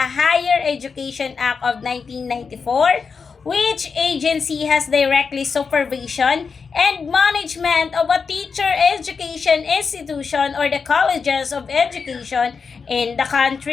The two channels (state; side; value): quieter; right; 5.4 dB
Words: Higher Education Act of 1994, which agency has directly supervision and management of a teacher education institution or the colleges of education in the